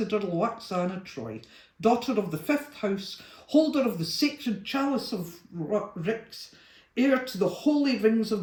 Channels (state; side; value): identical; both; correlation 1.00